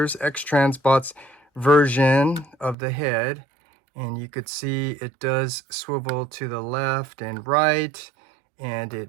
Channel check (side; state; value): left; drops out; at 2.8 s